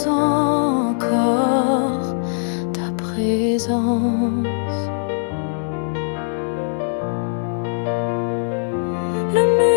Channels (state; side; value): silent; right; digital silence